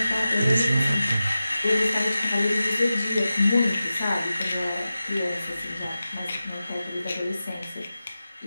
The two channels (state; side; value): inverted; both; correlation -0.94